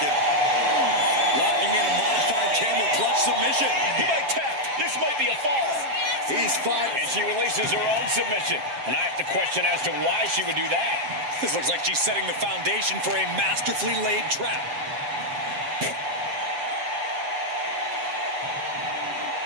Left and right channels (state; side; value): late; left; 7.5 ms